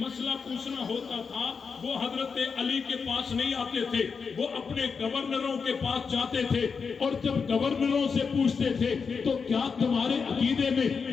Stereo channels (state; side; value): quieter; right; 5.5 dB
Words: پوچھنا ہوتا تھا، وہ حضرت علی کے پاس نہیں آتے تھے، وہ اپنے گورنروں کے پاس جاتے تھے، اور جب گورنروں سے پوچھتے تھے تو کیا تمہارے عقیدے میں